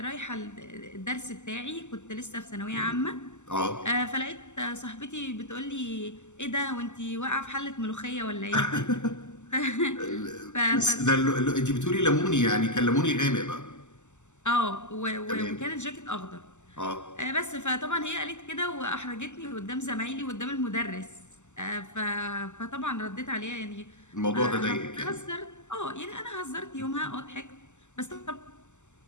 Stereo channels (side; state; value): right; late; 0.84 ms